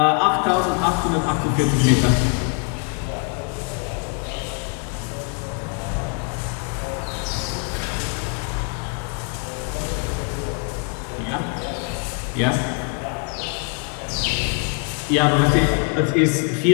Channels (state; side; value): quieter; right; 39.2 dB